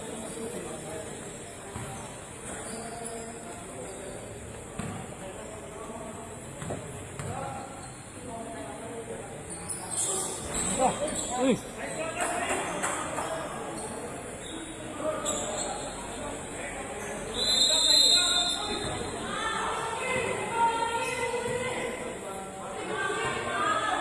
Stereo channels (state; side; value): identical; both; correlation 1.00